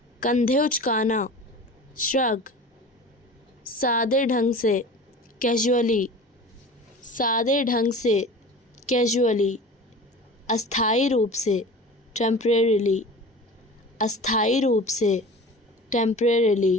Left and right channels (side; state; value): both; normal; correlation 0.37